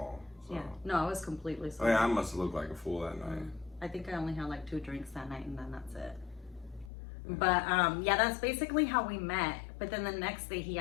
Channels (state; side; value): drops out; right; at 6.9 s